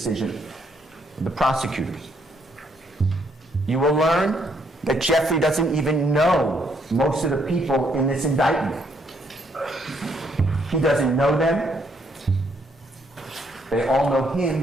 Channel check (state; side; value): normal; both; correlation 0.71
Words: of the prosecutors. You will learn that Jeffrey doesn't even know most of the people in this indictment. He doesn't know them. They all know